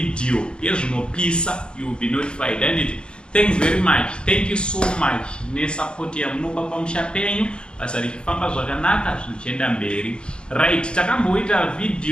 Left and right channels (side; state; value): right; late; 0.053 ms